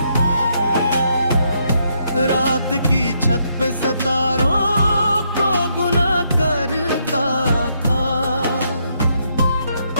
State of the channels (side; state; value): both; inverted; correlation -0.76